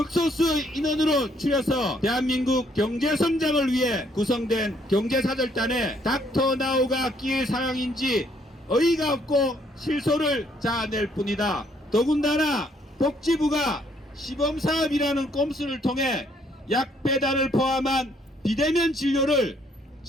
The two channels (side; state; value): both; normal; correlation 0.67